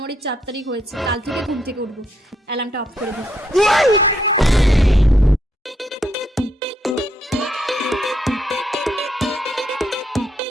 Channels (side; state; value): both; normal; correlation 0.76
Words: 4 তারিখ হয়েছে, কাল থেকে ঘুম থেকে উঠবো। অ্যালার্মটা অফ করে দিই।